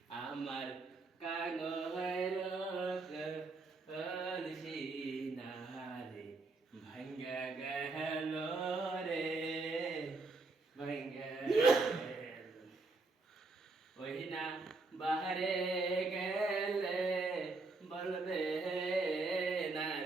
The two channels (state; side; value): quieter; left; 3.6 dB